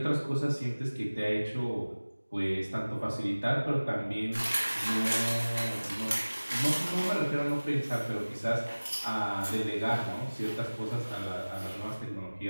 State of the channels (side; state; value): both; inverted; correlation -1.00